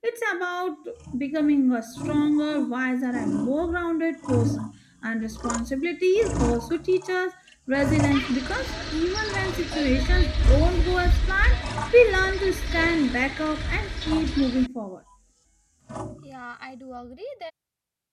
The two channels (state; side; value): identical; both; correlation 1.00